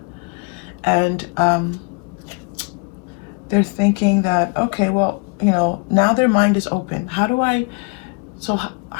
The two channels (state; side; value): quieter; right; 31.9 dB